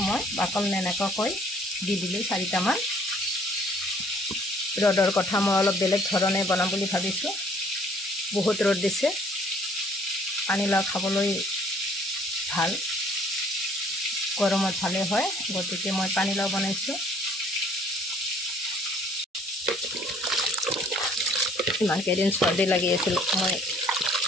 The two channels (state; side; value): normal; both; correlation 0.58